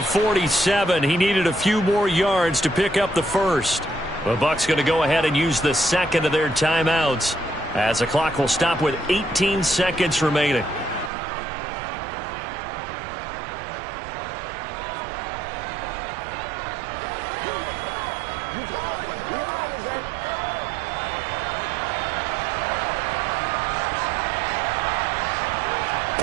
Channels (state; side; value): drops out; left; at 11.1 s